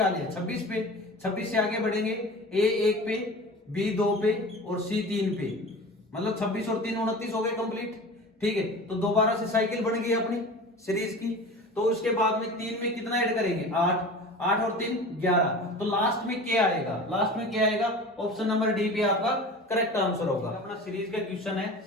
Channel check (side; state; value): both; normal; correlation 0.36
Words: गया 26 पे, 26 से आगे बढ़ेंगे A 1 पे, B 2 पे और C 3 पे, मतलब 26 और 3 29 हो गए कंप्लीट। ठीक है, तो दोबारा से साइकिल बन गई अपनी सीरीज की। तो उसके बाद में 3 में कितना ऐड करेंगे 8, 8 और 3 11, तो लास्ट में क्या आएगा, लास्ट में क्या आएगा, ऑप्शन नंबर डी पे आपका करेक्ट आंसर होगा। अपना सीरीज का क्वेश्चन है